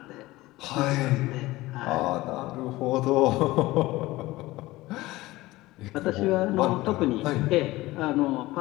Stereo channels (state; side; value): quieter; right; 18.7 dB